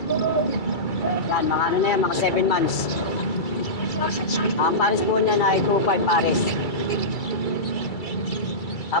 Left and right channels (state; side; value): late; right; 2.3 ms